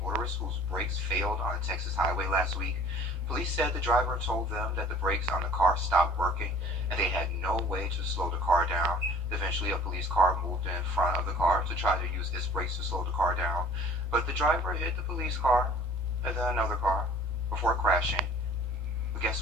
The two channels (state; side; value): normal; both; correlation 0.49